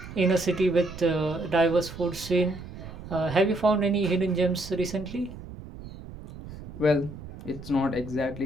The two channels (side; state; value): right; noise; rumble, 13 dB below the sound